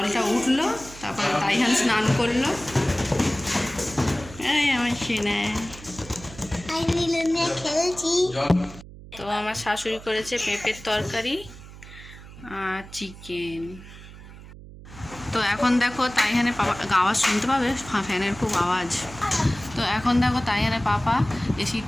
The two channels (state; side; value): noise; right; hum, 17 dB below the sound